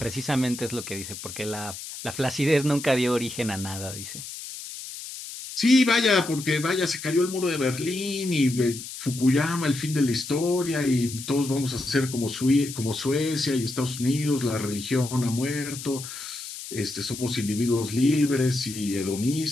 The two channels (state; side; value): noise; left; hiss, 10 dB below the sound